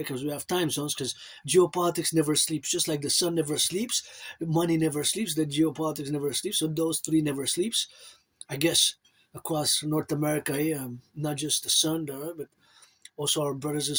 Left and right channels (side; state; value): both; identical; correlation 1.00